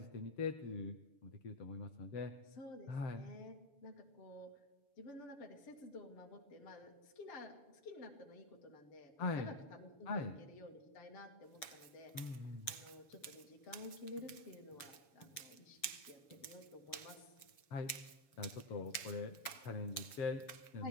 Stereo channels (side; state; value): right; late; 7.0 ms